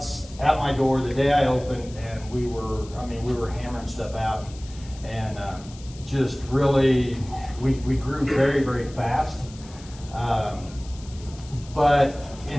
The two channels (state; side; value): noise; left; hiss, 20 dB below the sound